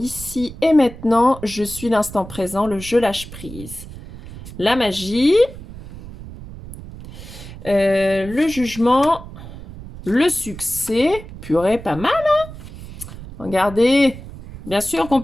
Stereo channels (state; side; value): noise; right; rumble, 14 dB below the sound